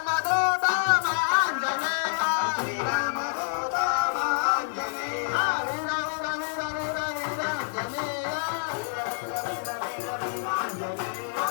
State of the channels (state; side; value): silent; right; digital silence